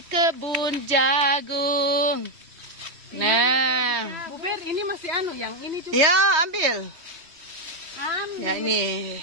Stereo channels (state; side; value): late; left; 3.1 ms